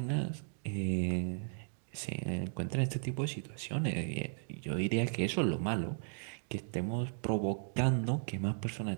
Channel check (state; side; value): silent; left; digital silence